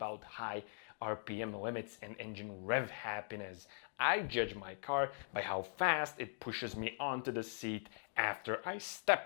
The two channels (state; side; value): silent; right; digital silence